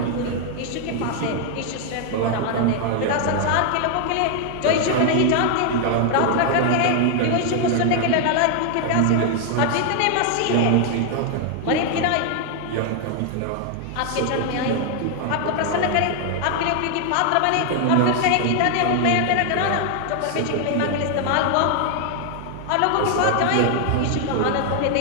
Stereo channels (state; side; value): different; both; correlation 0.00